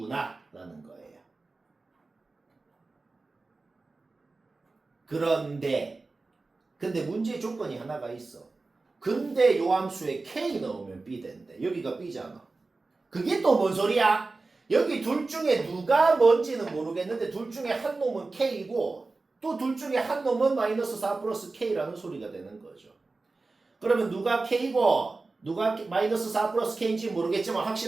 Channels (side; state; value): left; quieter; 3.6 dB